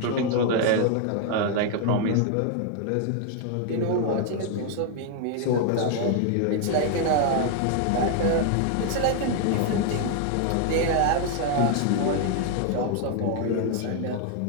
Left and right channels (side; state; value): both; different; correlation 0.00